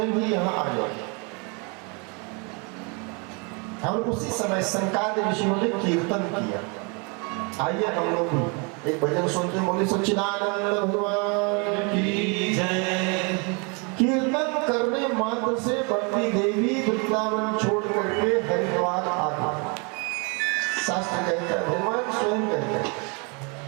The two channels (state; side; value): quieter; left; 33.1 dB